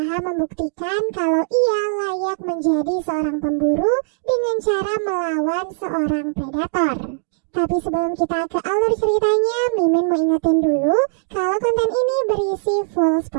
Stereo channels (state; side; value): silent; left; digital silence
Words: membuktikan kalau ia layak menjadi seorang pemburu dengan cara melawan seorang predator. Tapi sebelum kita ke alur ceritanya, Mimin mau ingetin dulu kalau konten ini berisi full